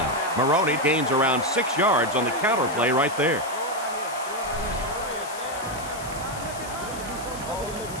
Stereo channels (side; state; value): left; noise; hiss, 14 dB below the sound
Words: Maroney gains around 6 yards on the counter play right there.